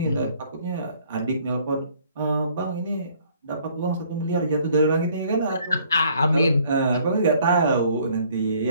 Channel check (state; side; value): inverted; both; correlation -0.61